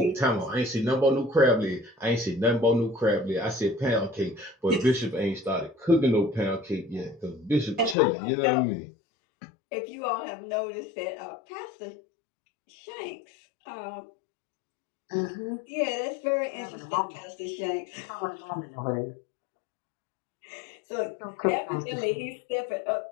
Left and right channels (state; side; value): drops out; right; at 8.0 s